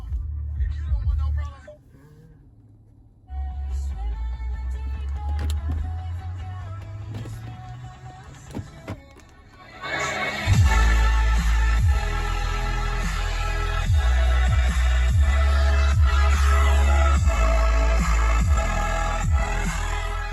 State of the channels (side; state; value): both; identical; correlation 1.00